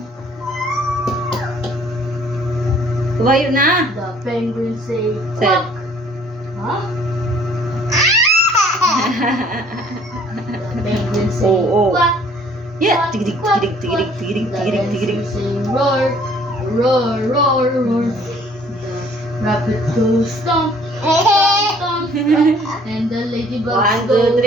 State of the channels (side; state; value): both; normal; correlation 0.57